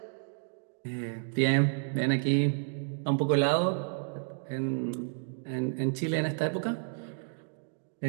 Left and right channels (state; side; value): silent; left; digital silence